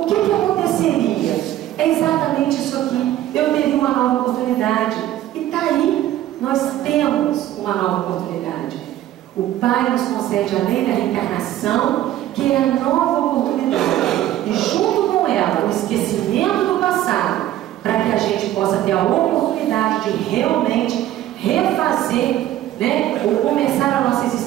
que aconteceria? É exatamente isso aqui. Eu teria uma nova oportunidade. E está aí, nós temos uma nova oportunidade. O Pai nos concede a lei da reencarnação, que é a nova oportunidade. E junto com ela, o esquecimento do passado, para que a gente possa ter a oportunidade de realmente refazer, ou começar a nossa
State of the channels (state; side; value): quieter; left; 13.3 dB